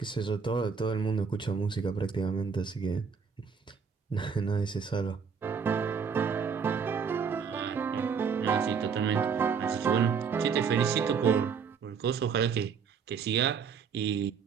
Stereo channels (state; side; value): quieter; left; 6.2 dB